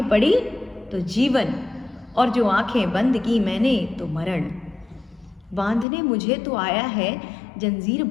पड़ी तो जीवन, और जो आंखें बंद की मैंने तो मरण। बांधने मुझे तो आया है, जंजीर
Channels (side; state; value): right; drops out; at 5.9 s